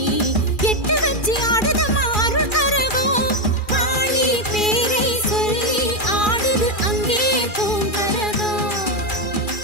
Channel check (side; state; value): right; late; 2.4 ms